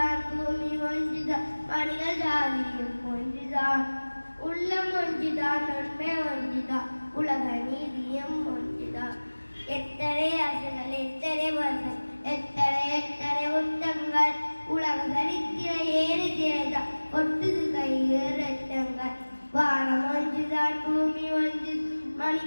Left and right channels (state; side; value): inverted; both; correlation -1.00